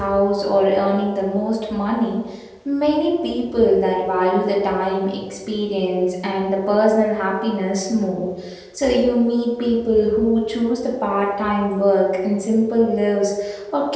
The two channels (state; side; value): identical; both; correlation 1.00